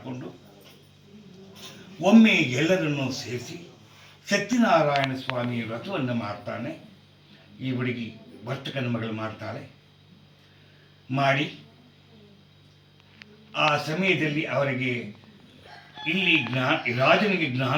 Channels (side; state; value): both; identical; correlation 1.00